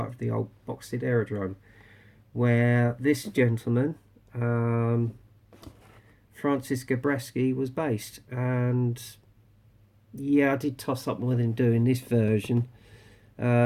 of the old Boxted Aerodrome, where this gentleman, Francis Gabreski, was based. And yeah, I did toss up with him doing this version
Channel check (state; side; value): identical; both; correlation 1.00